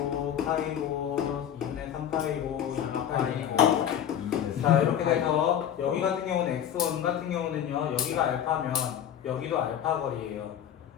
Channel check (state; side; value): quieter; right; 9.6 dB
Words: 파이고 2분의 3 파이고 2분의 파이고. 자, 이렇게 돼서 여기 같은 경우는 x1 같은 경우는요. 여기가 알파면 여기도 알파 거리예요.